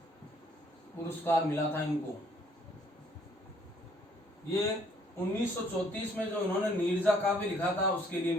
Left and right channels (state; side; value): normal; both; correlation 0.63